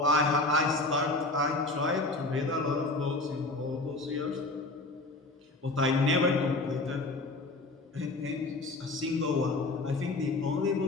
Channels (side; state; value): right; quieter; 3.1 dB